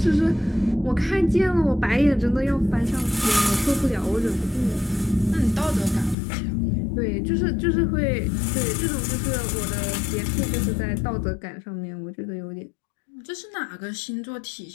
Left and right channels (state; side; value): drops out; right; at 6.2 s